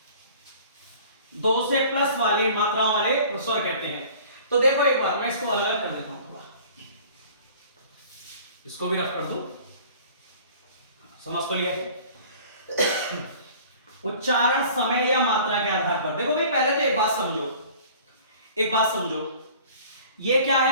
2 से प्लस वाली मात्राओं वाले स्वर कहते हैं। तो देखो एक बार मैं इसको अलग कर देता हूं, इसको भी रख कर दो, समझ तो लिया। उच्चारण समय या मात्रा के आधार पर देखो भाई, पहले तो एक बात समझो, ये क्या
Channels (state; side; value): inverted; both; correlation -0.47